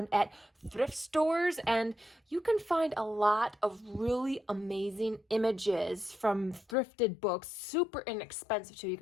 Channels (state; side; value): drops out; right; at 6.8 s